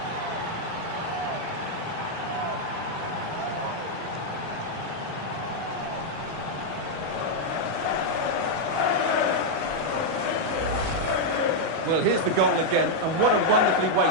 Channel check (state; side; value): late; left; 37 ms